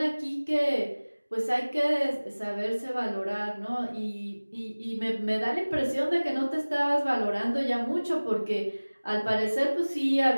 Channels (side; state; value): both; inverted; correlation -1.00